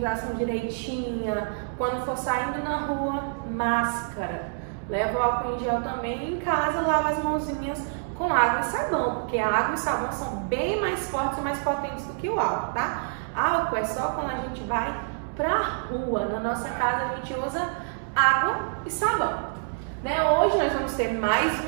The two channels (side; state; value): left; silent; 60 dB below the other